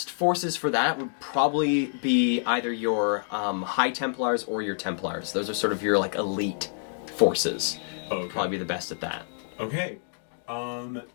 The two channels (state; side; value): silent; right; digital silence